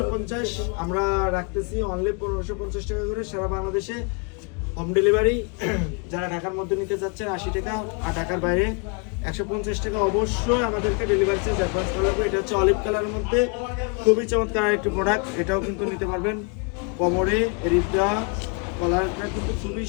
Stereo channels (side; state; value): right; quieter; 34.3 dB